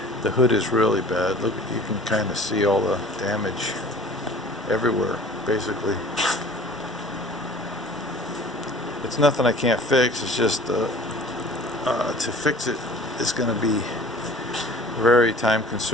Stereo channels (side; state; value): both; normal; correlation 0.46